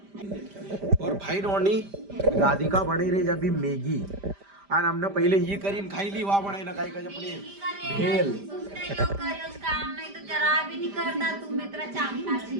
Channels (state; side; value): late; left; 5.0 ms